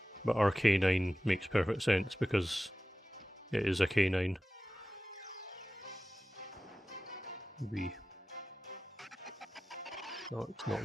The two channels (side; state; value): both; normal; correlation 0.95